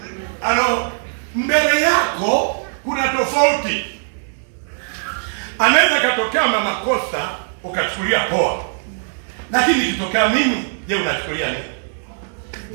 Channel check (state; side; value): silent; left; digital silence